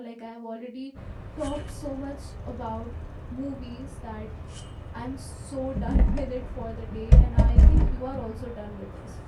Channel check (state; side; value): identical; both; correlation 1.00